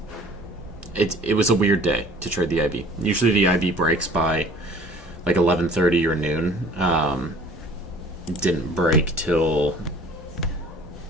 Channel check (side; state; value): both; normal; correlation 0.49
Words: It was a weird day to trade the IB. Usually the IB breaks by like 11:30 or noon. Didn't break till